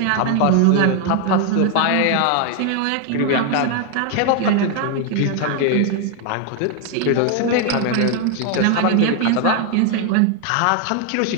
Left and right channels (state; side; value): different; both; correlation 0.01